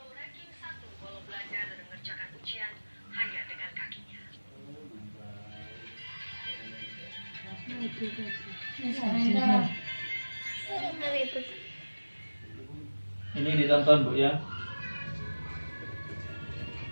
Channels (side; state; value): both; inverted; correlation -1.00